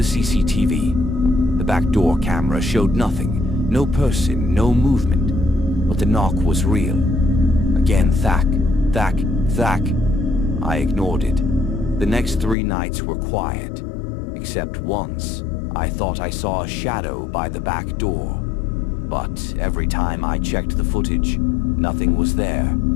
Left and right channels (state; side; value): drops out; right; at 12.6 s